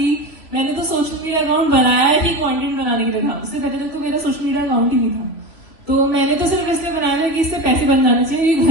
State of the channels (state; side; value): late; right; 3.0 ms